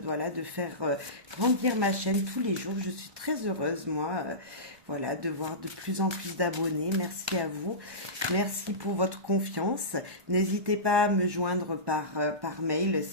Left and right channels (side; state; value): left; late; 1.1 ms